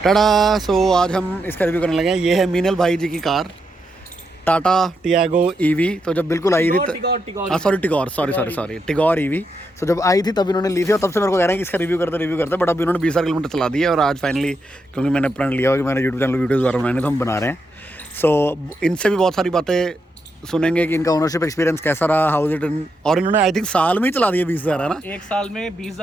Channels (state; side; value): normal; both; correlation 0.83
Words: सो आज हम इसका रिव्यू करने लगे हैं। ये है मीनल भाई जी की कार टाटा टियागो ईवी। तो जब बिल्कुल आई थी टिगोर ईवी। सो जब आई थी तब इन्होंने ली थी और तब से मेरे को कह रहे हैं कि इसका रिव्यू करते बट अभी इन्होंने 20,000 किलोमीटर चला दिया और आज फाइनली क्योंकि मैंने प्रण लिया हुआ कि मैंने यूट्यूब चैनल वीडियोज़ दोबारा बनाने तो हम बना रहे हैं। सो इनसे भी बहुत सारी बातें सुनेंगे कि इनका ओनरशिप एक्सपीरियंस कैसा रहा, हाउ इट इन, और इन्होंने आई थिंक साल में ही चला दिया 20,000 है ना। एक साल में